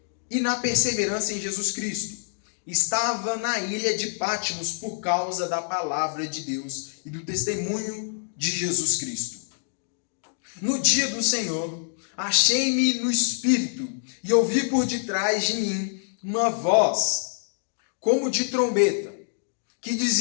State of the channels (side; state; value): right; silent; digital silence